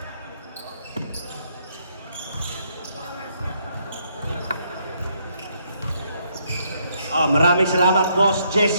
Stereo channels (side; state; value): both; inverted; correlation -0.72